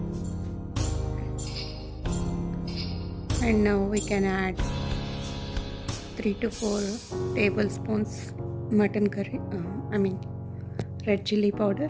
And now we can add 3 to 4 tablespoons mutton curry, red chilli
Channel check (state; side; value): identical; both; correlation 1.00